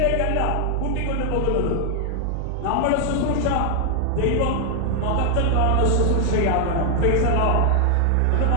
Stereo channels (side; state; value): both; different; correlation 0.00